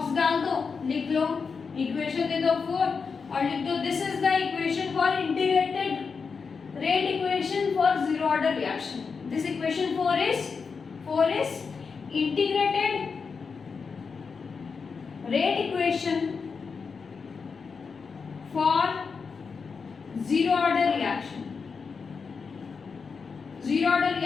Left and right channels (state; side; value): quieter; right; 5.3 dB